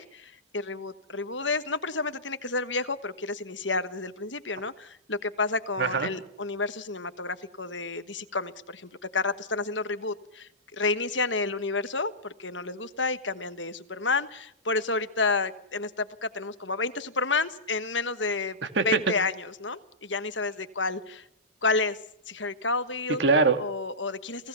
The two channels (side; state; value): both; normal; correlation -0.17